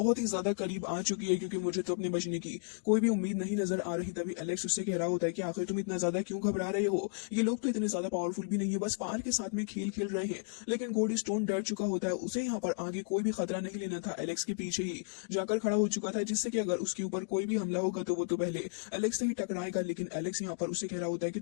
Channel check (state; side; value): quieter; right; 39.6 dB